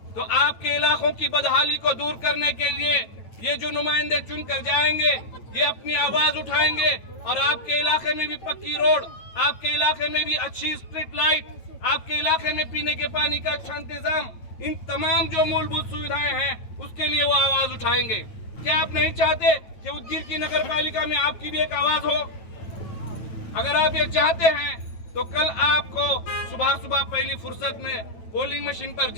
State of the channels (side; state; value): right; late; 8.6 ms